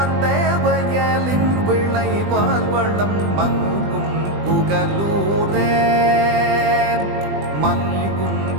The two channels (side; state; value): left; late; 20 ms